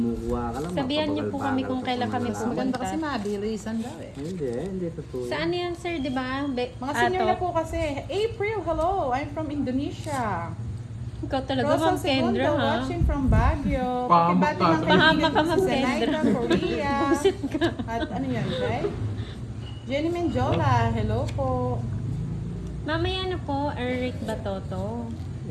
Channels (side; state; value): both; identical; correlation 1.00